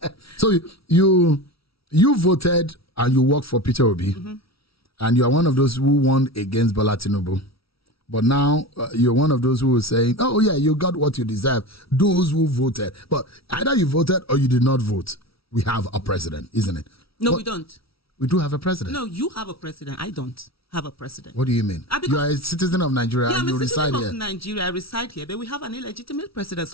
So you voted and you work for Peter Obi, and you are one of those who won against Bola Tinubu. But now you're one of those who are saying, oh, yeah, you got what you deserve. Those who voted. But either you voted or you did not vote. We have a president, isn't it? No, we don't. We do have a president. No, you have a president. I don't have a president. What do you mean? You are a citizen of Nigeria, and you reside here. Nigeria, I reside here, but we have an illegitimate president,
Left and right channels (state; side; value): late; right; 0.76 ms